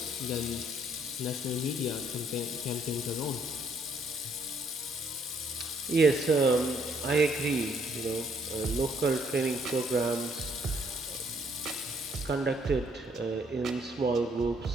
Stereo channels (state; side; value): normal; both; correlation 0.67